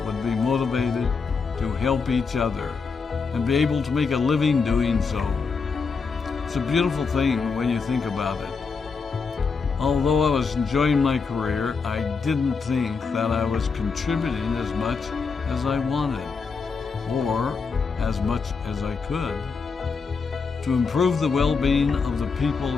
would be motivated to help each other and be able to make a living doing so. It's a beautiful thing when you think about it. Although I was enjoying my career, I didn't think that I was contributing as much as I wanted, or as much as I could, to improve the well-being of the people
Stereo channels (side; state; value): right; quieter; 5.1 dB